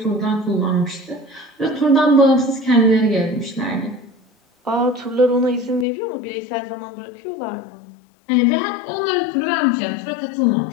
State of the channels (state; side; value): drops out; right; at 5.9 s